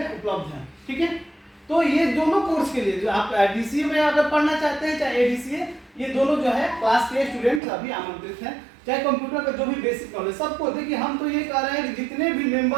उपलब्ध है। ठीक है, तो ये दोनों कोर्स के लिए जो आप डीसीए में अगर पढ़ना चाहते हैं चाहे एडीसीए, ये दोनों जो है क्लास के स्टूडेंट अभी आमंत्रित हैं। चाहे कंप्यूटर का जो भी बेसिक नॉलेज सबको, देखिए हम तो ये कह रहे हैं कि जितने भी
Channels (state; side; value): drops out; left; at 7.6 s